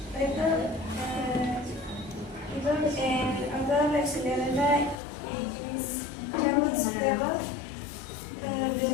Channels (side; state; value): right; drops out; at 5.0 s